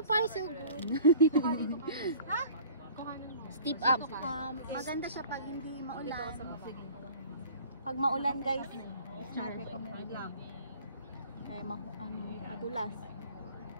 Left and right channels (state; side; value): inverted; both; correlation -0.47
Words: far, so good. Ha? Steep up. Maganda siya pag hindi maulan. Pag maulan, guys, it's not recommended lang. Kaya madulas.